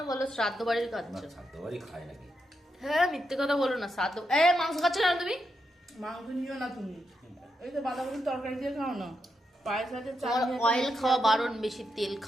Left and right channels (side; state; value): both; normal; correlation 0.84